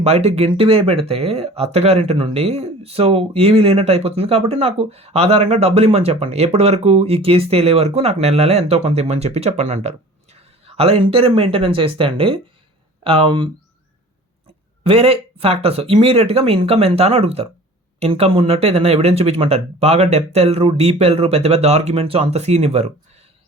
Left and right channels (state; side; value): normal; both; correlation 0.44